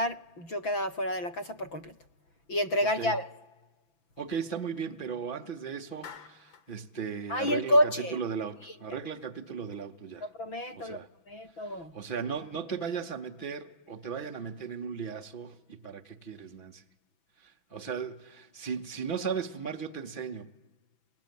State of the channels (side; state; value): right; late; 6.0 ms